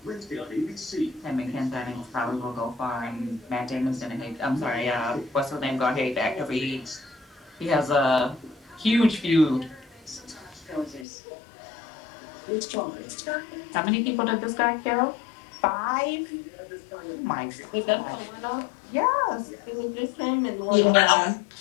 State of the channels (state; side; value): drops out; right; at 11.1 s